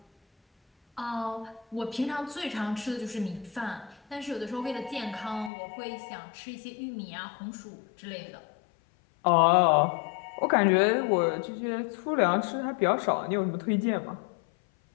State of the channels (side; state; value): right; drops out; at 5.5 s